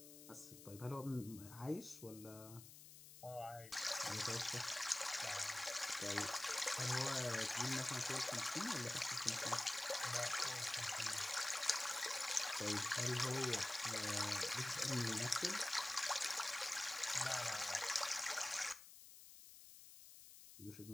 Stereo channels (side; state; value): left; noise; hiss, 16 dB below the sound